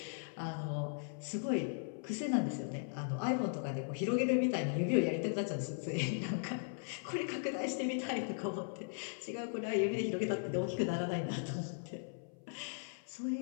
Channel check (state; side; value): silent; right; 52 dB below the other